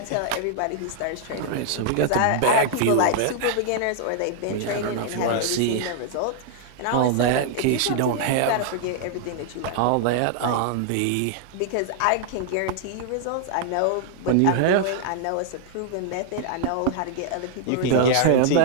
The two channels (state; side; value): different; both; correlation -0.01